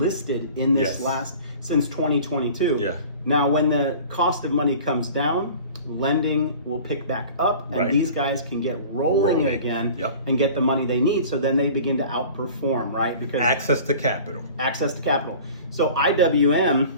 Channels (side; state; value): both; inverted; correlation -0.43